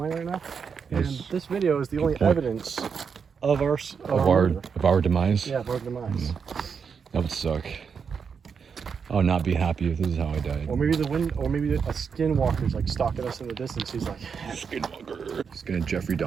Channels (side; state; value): left; quieter; 6.3 dB